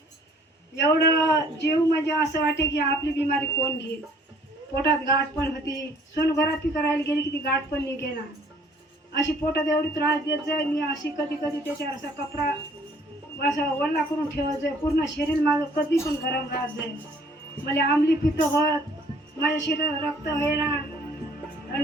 एवढं जीव म्हणजे असं वाटे की आपली बिमारी कोण घेईल. पोटात गाठ पण होती, सोनोग्राफी करायला गेली की ती गाठ पण निघेना. अशी पोटात एवढी त्रास देत जाय मी. अशी कधी कधी त्याच्यावर असा कपडा असं वल्ला करून ठेवत जाय. पूर्ण शरीर माझं कधी पण गरम राहत जाय. मला आंबली पित्त होत, माझ्या शरीरात रक्त होईना. आणि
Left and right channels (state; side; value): normal; both; correlation 0.57